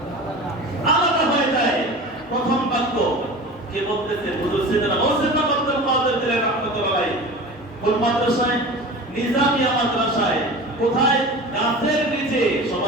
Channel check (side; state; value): both; normal; correlation 0.35